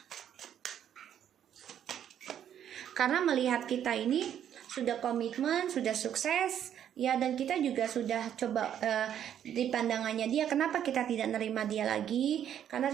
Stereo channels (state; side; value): quieter; left; 9.8 dB